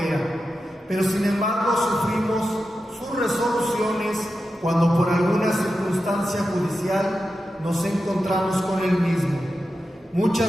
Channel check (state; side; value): normal; both; correlation 0.90